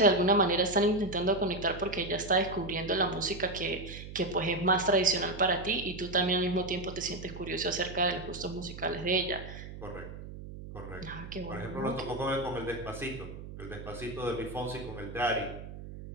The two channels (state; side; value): noise; right; hum, 12 dB below the sound